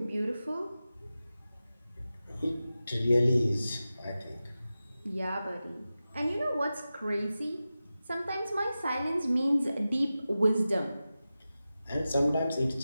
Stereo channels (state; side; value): inverted; both; correlation -0.94